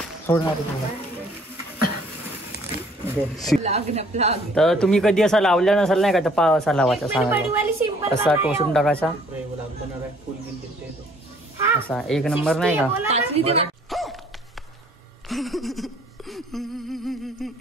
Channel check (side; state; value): both; normal; correlation 0.59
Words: सोडणार तर तुम्ही कधी असा लावला नसाल नाही का, तर पहा असा लावायचा, सांगा असा टोचून टाकायचा, असा एक नंबर नाही का.